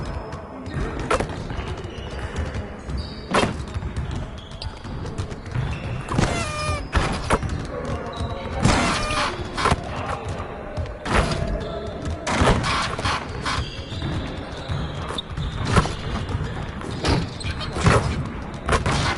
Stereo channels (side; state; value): both; identical; correlation 1.00